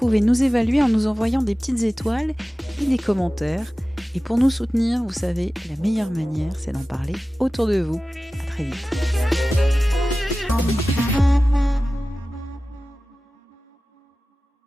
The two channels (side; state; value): both; normal; correlation 0.96